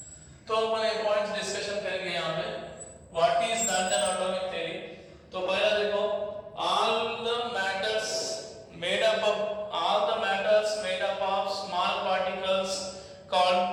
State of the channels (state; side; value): identical; both; correlation 1.00